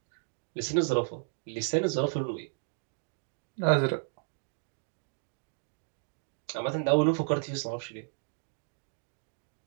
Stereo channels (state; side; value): silent; left; digital silence